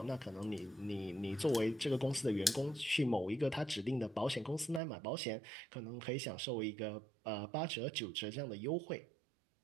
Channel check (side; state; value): left; drops out; at 4.8 s